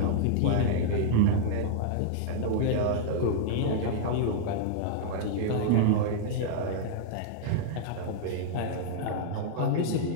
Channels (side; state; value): both; different; correlation -0.01